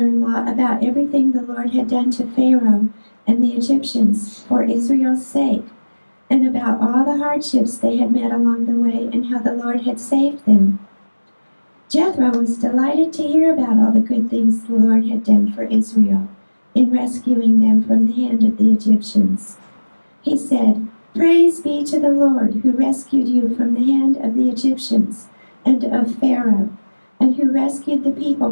about everything the Lord had done to Pharaoh and the Egyptians for Israel's sake, and about all the hardships they had met along the way and how the Lord had saved them. Jethro was delighted to hear about all the good things the Lord had done for Israel in rescuing them from the hand of the Egyptians. He said, Praise be to the Lord who rescued you from the hand of the Egyptians and of Pharaoh, and who rescued the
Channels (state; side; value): inverted; both; correlation -1.00